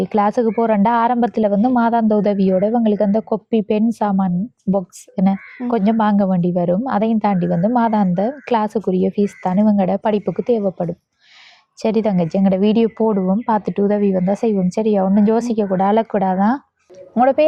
கிளாஸுக்கு போகிறேன்டா ஆரம்பத்தில் வந்து மாதாந்த உதவியோட இவங்களுக்கு அந்த கொப்பி, பென், சாமான், பாக்ஸ் என்ன கொஞ்சம் வாங்க வேண்டி வரும். அதையும் தாண்டி வந்து மாதாந்த கிளாஸுக்குரிய ஃபீஸ் தான் இவங்களோட படிப்புக்கு தேவைப்படும். சரி தங்கச்சி, எங்களோட வீடியோ போடுவோம், பார்த்துட்டு உதவி வந்தால் செய்வோம். சரியா? ஒன்றும் யோசிக்கக்கூடாது, அழக்கூடாதான். உங்களோட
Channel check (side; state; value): both; identical; correlation 1.00